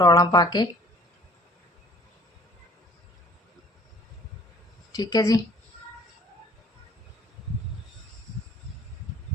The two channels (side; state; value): both; normal; correlation 0.52